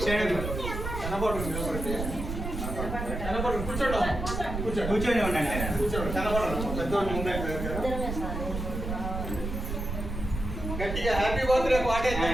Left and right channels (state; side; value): noise; right; rumble, 5 dB below the sound